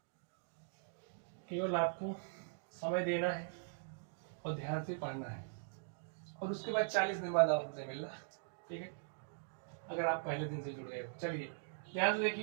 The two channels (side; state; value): left; silent; digital silence